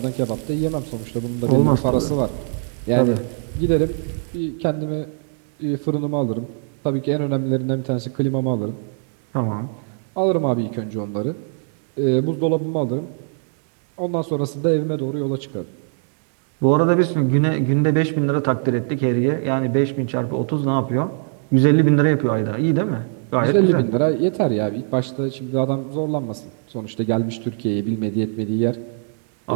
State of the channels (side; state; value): left; silent; digital silence